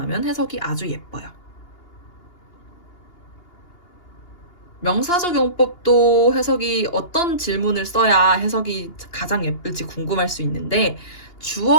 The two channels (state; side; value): late; right; 2.8 ms